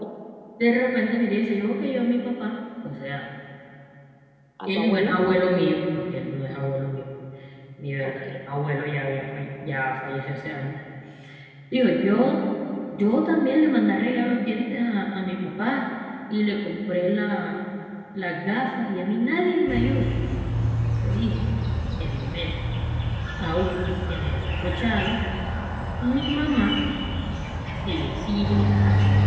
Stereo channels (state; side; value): identical; both; correlation 1.00